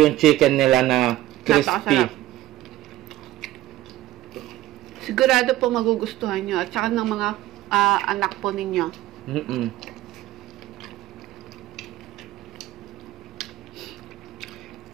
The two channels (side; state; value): left; quieter; 15.5 dB